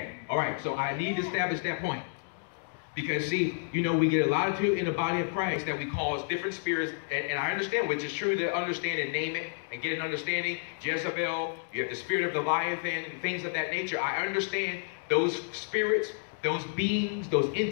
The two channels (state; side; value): silent; right; digital silence